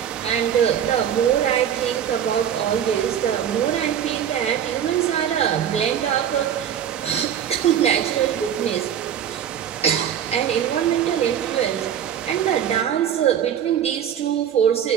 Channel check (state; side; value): quieter; left; 9.3 dB